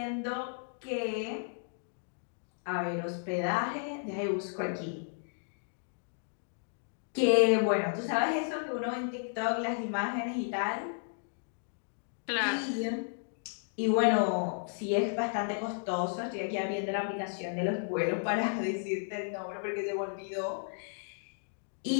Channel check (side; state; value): right; silent; digital silence